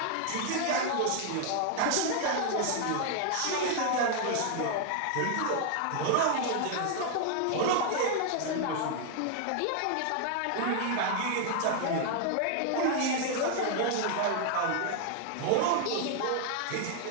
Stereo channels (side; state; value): both; different; correlation 0.00